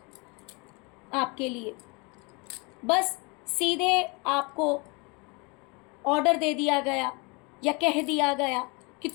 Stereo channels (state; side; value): quieter; right; 29.5 dB